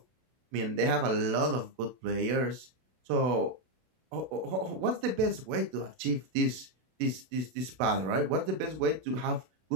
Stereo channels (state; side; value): late; left; 32 ms